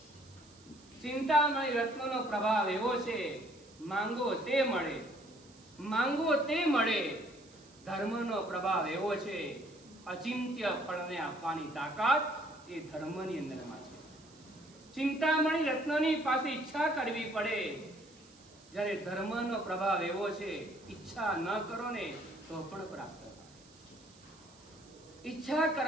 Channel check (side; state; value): right; noise; hiss, 25 dB below the sound